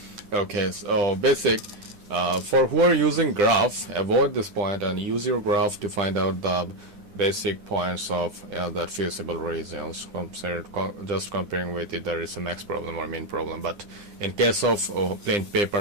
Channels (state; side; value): late; left; 9.9 ms